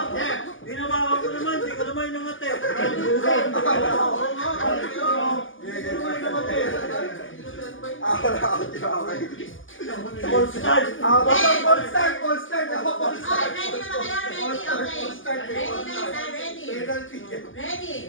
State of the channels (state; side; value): late; right; 0.58 ms